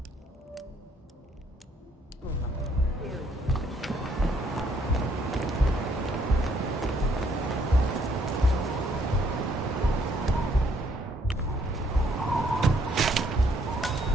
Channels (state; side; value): normal; both; correlation 0.67